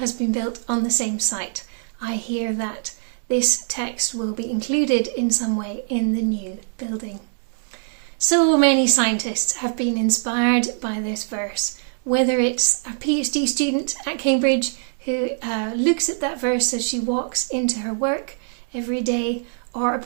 been built on the same site, I hear that this text will be included in some way in the new building. So many scientists have been inspired by this verse, whether it's a PhD student at Cambridge who looks at that verse as she walks into her work every day, or a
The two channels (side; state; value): left; silent; digital silence